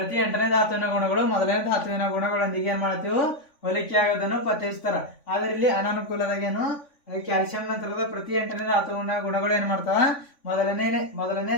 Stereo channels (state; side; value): late; right; 3.5 ms